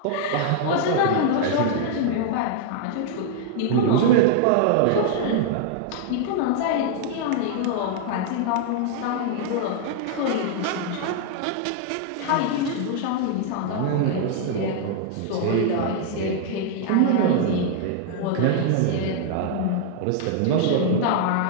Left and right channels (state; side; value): different; both; correlation 0.00